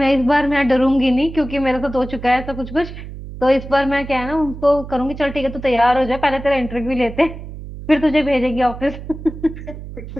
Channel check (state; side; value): noise; right; hum, 12 dB below the sound